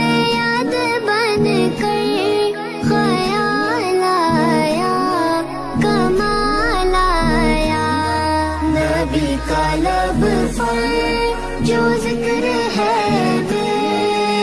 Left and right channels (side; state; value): both; identical; correlation 1.00